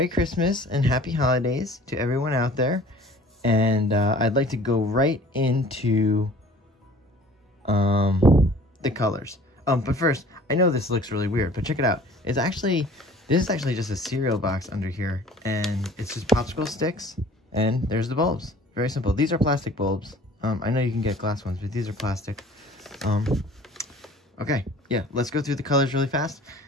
Christmas and Happy Holidays to everyone out there. And I'd like to go right into the colors. But first, I know this looks really weird, but check it out. This is actually just a cereal box under here, and it's just popsicle sticks, and there's the bulbs. Very simple. These are plastic bulbs. I know you can get glass ones, but these are plastic. Okay, yeah, let's go through the colors really fast.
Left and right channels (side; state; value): both; normal; correlation 0.49